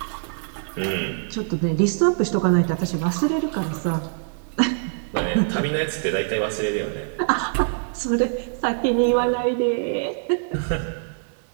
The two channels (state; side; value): silent; left; digital silence